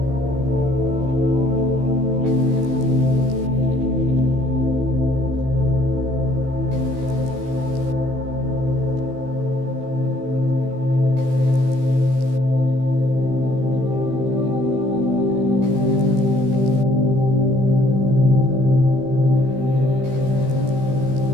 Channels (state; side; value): late; left; 15 ms